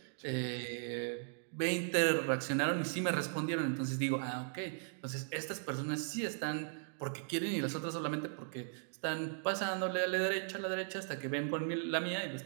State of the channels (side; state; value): left; silent; digital silence